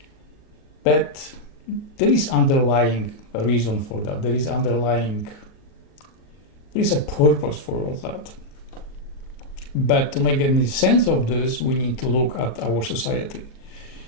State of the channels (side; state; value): right; late; 38 ms